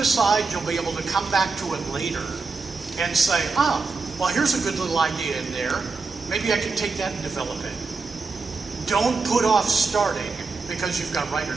you'll be able to come back to it later and say, well, here's a good little idea in there. Maybe I can take that and develop it. Don't put off starting because you've got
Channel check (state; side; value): quieter; left; 4.3 dB